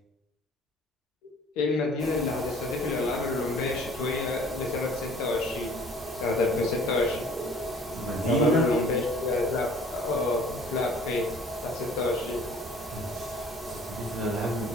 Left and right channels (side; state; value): both; normal; correlation 0.52